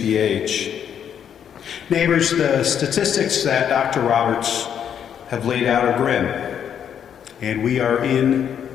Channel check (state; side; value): quieter; right; 8.7 dB